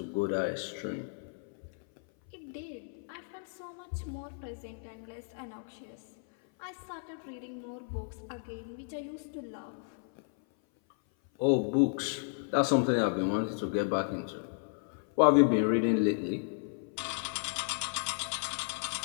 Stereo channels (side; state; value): right; silent; 55 dB below the other